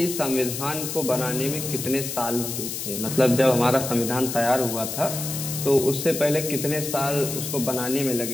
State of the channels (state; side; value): noise; left; hiss, 5 dB below the sound